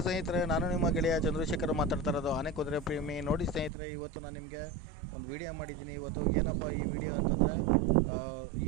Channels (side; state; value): left; drops out; at 3.7 s